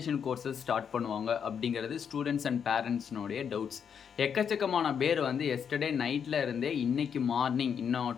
courses start பண்ணுவாங்க அப்படிங்கிறது ஸ்டூடெண்ட்ஸ் அண்ட் பேரண்ட்ஸ்னுடைய டவுட்ஸ். எக்கச்சக்கமான பேர் வந்து எஸ்டர்டே நைட்டில் இருந்தே இன்றைக்கி மார்னிங் இன்னும்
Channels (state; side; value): quieter; right; 7.4 dB